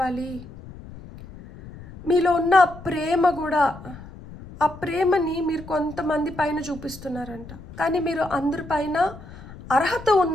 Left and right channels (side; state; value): left; noise; rumble, 16 dB below the sound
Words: మీలో ఉన్న ప్రేమ కూడా, ఆ ప్రేమని మీరు కొంతమంది పైన చూపిస్తున్నారంట. కానీ మీరు అందరిపైన అర్హత